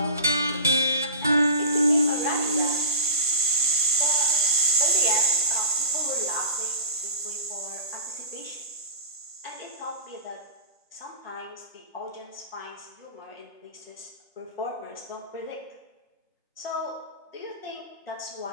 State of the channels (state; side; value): inverted; both; correlation -0.34